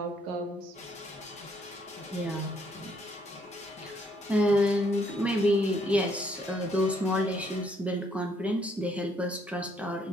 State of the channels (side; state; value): both; normal; correlation 0.69